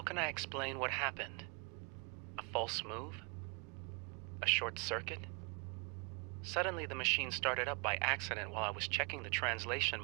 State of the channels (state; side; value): quieter; left; 31.8 dB